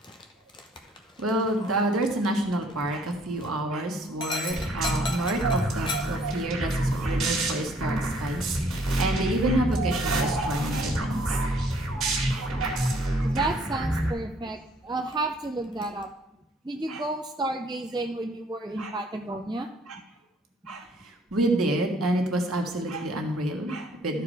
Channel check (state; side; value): normal; both; correlation 0.61